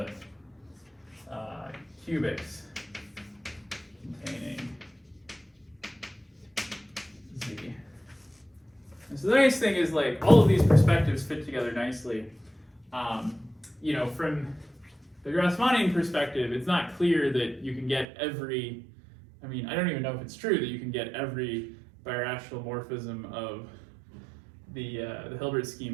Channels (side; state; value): left; drops out; at 18.1 s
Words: cubics containing Z. And so the nice thing is, like, all of these perspectives fit together nicely. You know, from the Grassmannian perspective, it's not clear that you can get every, I mean, I don't even know if it's true that you can get every birational morphism of the Hilbert